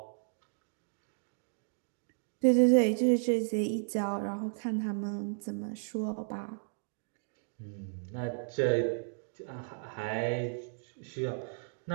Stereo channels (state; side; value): silent; left; digital silence